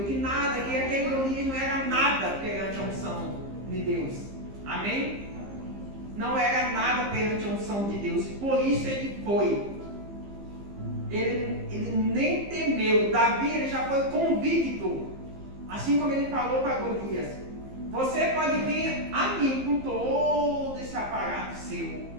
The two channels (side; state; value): left; late; 15 ms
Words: que nada, que aquele Golias não era nada perante a unção de Deus. Amém? Não era nada perante a unção de Deus. E por isso ele foi. Ele nem temeu. Davi, ele já foi convicto. Assim como ele falou para Golias: você pode vir a mim com todo esse aparato seu,